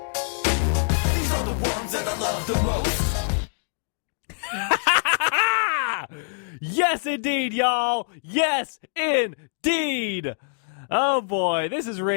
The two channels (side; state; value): right; silent; digital silence